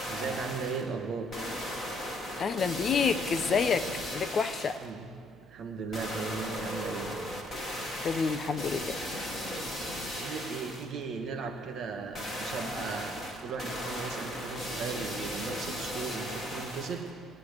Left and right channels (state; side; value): noise; right; hum, 23 dB below the sound